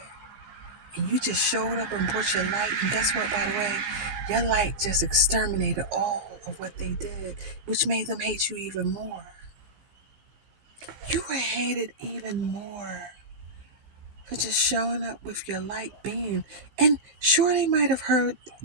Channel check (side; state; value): left; late; 16 ms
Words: And you just showed up and brought your light. And guess what, by the way? Your light just exterminated all of what they did, which made them hate you even more. You were hated even more for just showing up with your light beam. And sure, they might have heard